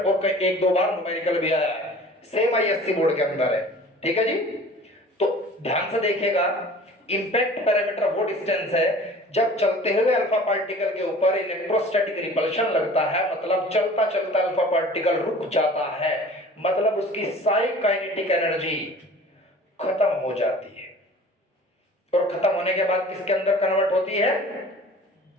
1-2 बार न्यूमेरिकल भी आया है, सेम आईएससी बोर्ड के अंदर है। ठीक है जी। तो ध्यान से देखिएगा, इंपैक्ट पैरामीटर वो डिस्टेंस है जब चलते हुए अल्फा पार्टिकल के ऊपर इलेक्ट्रोस्टैटिक रिपल्शन लगता है, मतलब चलता चलता अल्फा पार्टिकल रुक जाता है, मतलब उसकी साई काइनेटिक एनर्जी खत्म हो जाती है और खत्म होने के बाद किसके अंदर कन्वर्ट होती है?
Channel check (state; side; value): normal; both; correlation 0.45